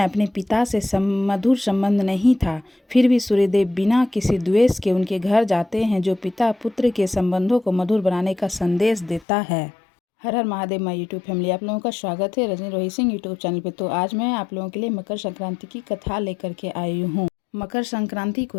अपने पिता से मधुर संबंध नहीं था, फिर भी सूर्यदेव बिना किसी द्वेष के उनके घर जाते हैं, जो पिता पुत्र के संबंधों को मधुर बनाने का संदेश देता है। हर हर महादेव माय यूट्यूब फैमिली, आप लोगों का स्वागत है रजनी रोहित सिंह यूट्यूब चैनल पे। तो आज मैं आप लोगों के लिए मकर संक्रांति की कथा लेकर के आई हूँ। मकर संक्रांति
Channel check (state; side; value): drops out; right; at 9.2 s